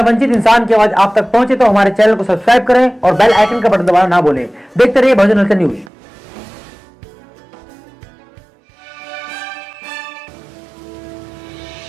वंचित इंसान की आवाज आप तक पहुंचे तो हमारे चैनल को सब्सक्राइब करें और बेल आइकन का बटन दबाना ना भूलें। देखते रहिए बहुजन हलचल न्यूज।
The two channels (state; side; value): drops out; left; at 5.9 s